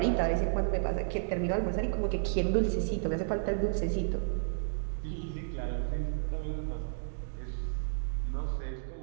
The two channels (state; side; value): silent; left; digital silence